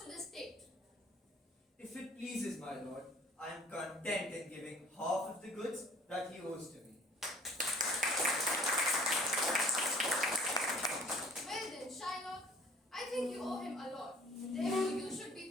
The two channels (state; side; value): normal; both; correlation 0.53